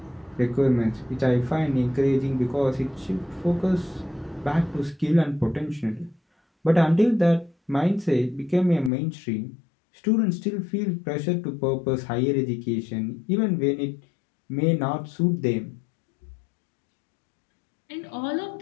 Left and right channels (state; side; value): drops out; right; at 8.9 s